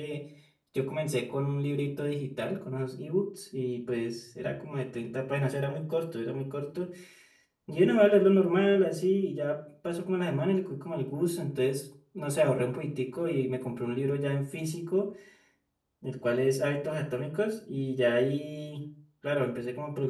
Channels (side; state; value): both; identical; correlation 1.00